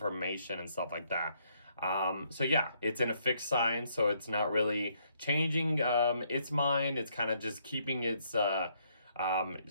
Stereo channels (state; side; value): inverted; both; correlation -0.71